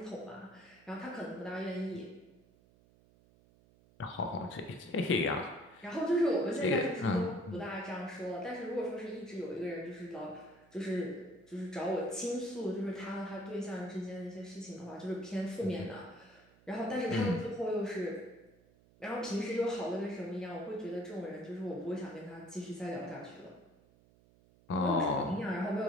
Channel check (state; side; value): noise; right; hum, 28 dB below the sound